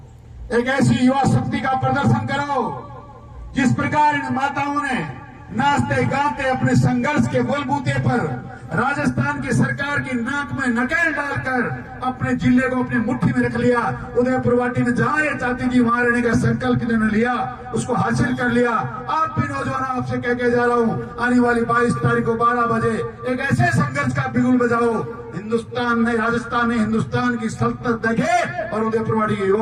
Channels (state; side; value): identical; both; correlation 1.00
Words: एक ऐसी युवा शक्ति का प्रदर्शन करो जिस प्रकार इन माताओं ने नाचते गाते अपने संघर्ष के बलबूते पर राजस्थान की सरकार की नाक में नकेल डालकर अपने जिले को अपनी मुट्ठी में रख लिया। उदयपुर वाटी में जहां ये चाहती थी वहां रहने का संकल्प इन्होंने लिया, उसको हासिल कर लिया। आप भी नौजवान, आपसे कह के जा रहा हूं, आने वाली 22 तारीख को 12 बजे एक ऐसे संघर्ष का बिगुल बजाओ, हिंदुस्तान ने, राजस्थान ने हिंदुस्तान की सल्तनत देखे और उदयपुर वाटी के